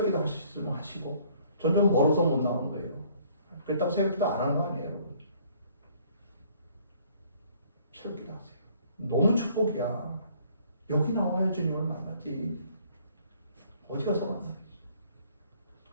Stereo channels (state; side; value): inverted; both; correlation -0.60